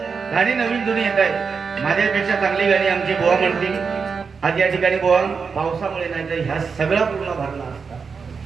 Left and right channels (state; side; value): quieter; left; 5.5 dB